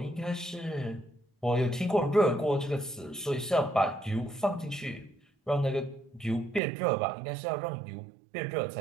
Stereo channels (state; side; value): drops out; left; at 6.6 s